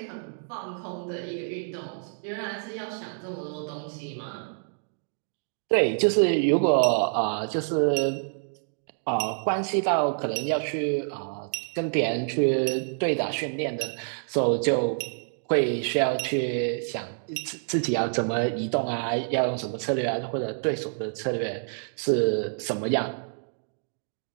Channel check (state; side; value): silent; left; digital silence